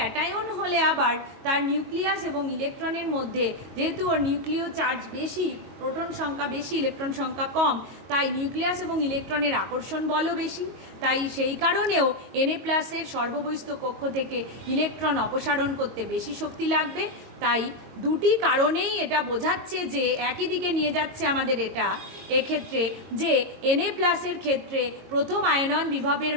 হলে আবার তার নিউক্লিয়াস এবং ইলেকট্রনের মধ্যে যেহেতু ওর নিউক্লিয় চার্জ বেশি, প্রোটন সংখ্যা বেশি, ইলেকট্রন সংখ্যা কম, তাই নিউক্লিয়াস এবং ইলেকট্রনের আকর্ষণ বলও বেশি। তাই সেই কারণেও Na+ এর সর্ববহিস্থ কক্ষ থেকে ইলেকট্রন অপসারণ করতে বেশি শক্তি লাগবে। তাই দুটি কারণেই এটা বোঝাচ্ছে যে একই দিকে নিয়ে যাচ্ছে আমাদের এটা এক্ষেত্রে যে Na+ এর ক্ষেত্রে প্রথম আয়নন বিভবের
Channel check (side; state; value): left; late; 22 ms